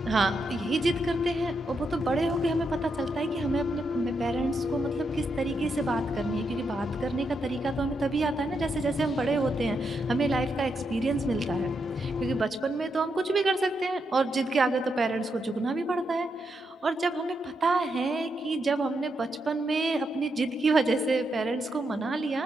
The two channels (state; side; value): normal; both; correlation 0.82